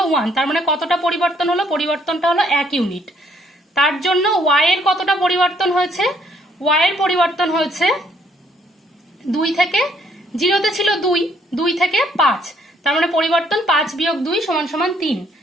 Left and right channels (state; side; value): normal; both; correlation 0.66